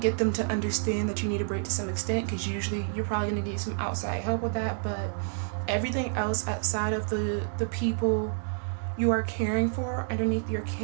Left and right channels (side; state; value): left; silent; digital silence